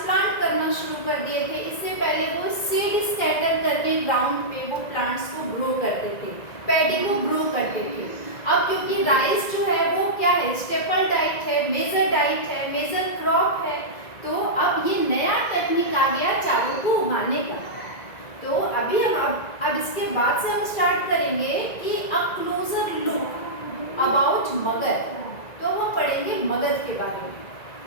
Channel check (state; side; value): late; right; 1.9 ms